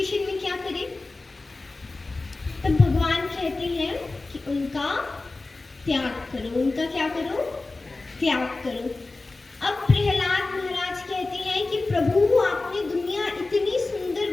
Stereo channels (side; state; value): right; quieter; 3.4 dB